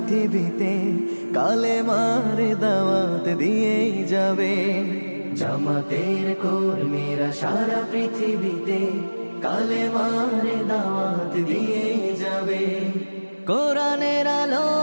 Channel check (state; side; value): inverted; both; correlation -1.00